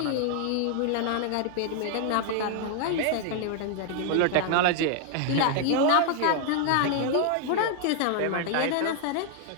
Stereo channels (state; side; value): different; both; correlation 0.00